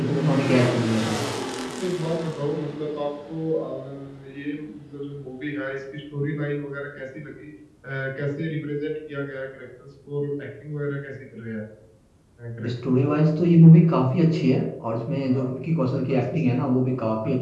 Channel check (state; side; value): identical; both; correlation 1.00